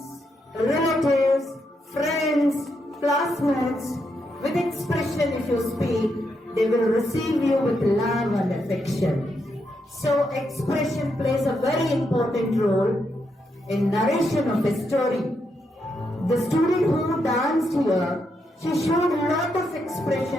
relatives, friends, classmates, with expression if you speak, they will receive you with love and affection. So expression plays a very important role in narration of a story. The student who danced here, she showed a lot of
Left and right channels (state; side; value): normal; both; correlation 0.81